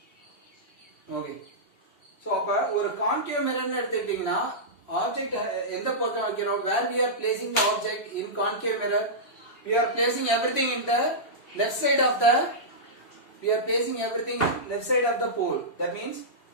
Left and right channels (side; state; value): right; late; 2.8 ms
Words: Okay. So அப்ப ஒரு concave mirror ன்னு எடுத்துக்கிட்டீங்கன்னா object எந்த பக்கம் வைக்கிறோம், where we are placing the object in concave mirror, we are placing everything in the left side of the pole. That means